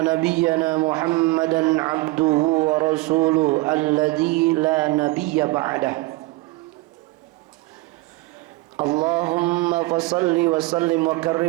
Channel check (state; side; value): quieter; left; 21.7 dB